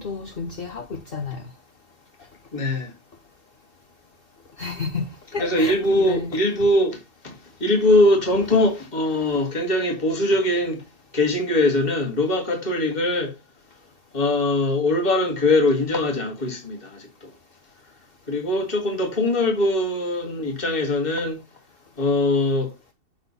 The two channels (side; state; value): left; late; 2.7 ms